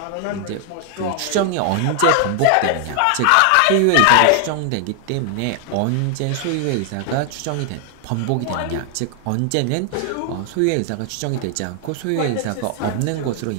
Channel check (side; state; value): both; different; correlation 0.00